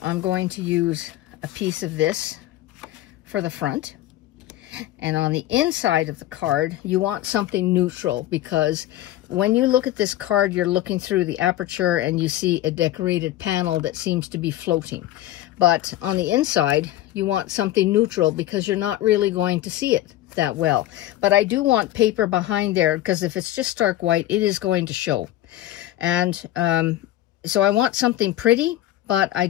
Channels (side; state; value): right; quieter; 14.4 dB